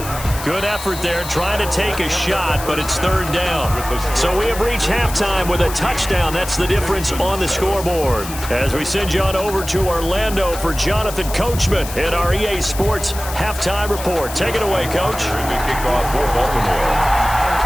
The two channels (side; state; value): left; noise; hiss, 11 dB below the sound